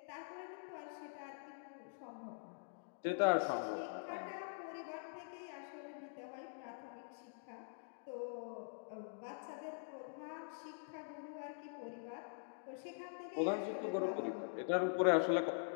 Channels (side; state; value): right; silent; digital silence